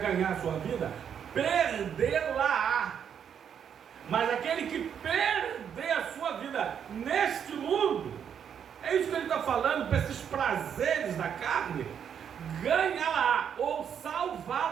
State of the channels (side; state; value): left; quieter; 8.1 dB